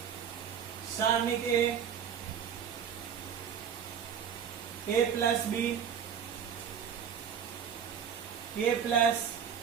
सारणी के a plus B, a plus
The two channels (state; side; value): quieter; left; 7.9 dB